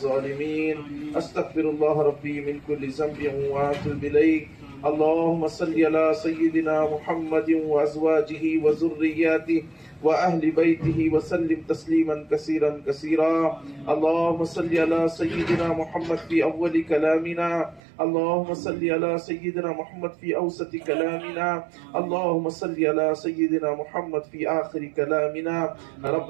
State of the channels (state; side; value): drops out; left; at 17.8 s